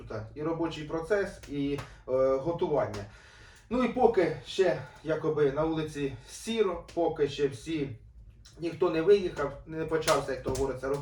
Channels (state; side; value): identical; both; correlation 1.00